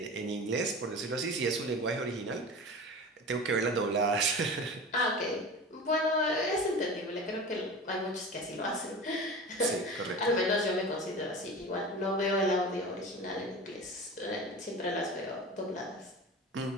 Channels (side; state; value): both; normal; correlation 0.33